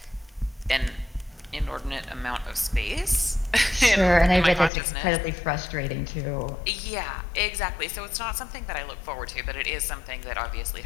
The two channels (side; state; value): right; drops out; at 4.7 s